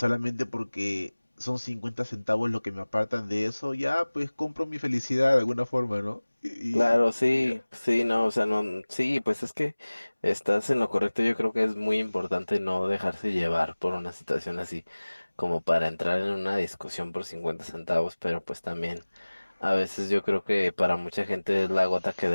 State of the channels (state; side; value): inverted; both; correlation -1.00